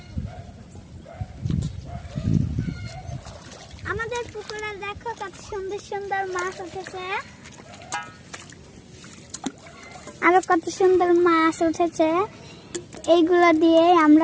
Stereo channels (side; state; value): both; identical; correlation 1.00